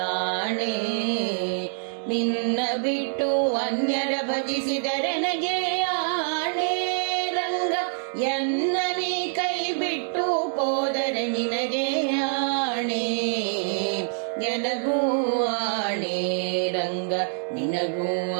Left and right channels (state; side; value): silent; left; digital silence